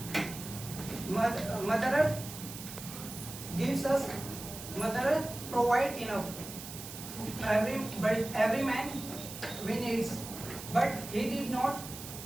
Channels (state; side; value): noise; right; hiss, 11 dB below the sound